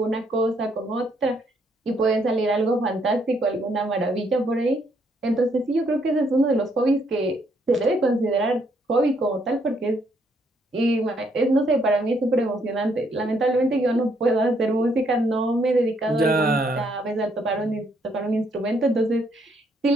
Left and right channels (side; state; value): both; normal; correlation 0.71